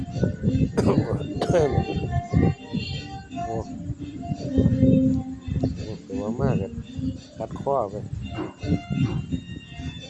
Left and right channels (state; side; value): identical; both; correlation 1.00